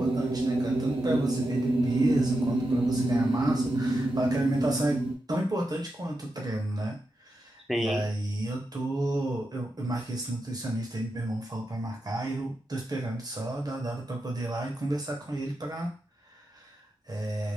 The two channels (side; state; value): both; normal; correlation 0.88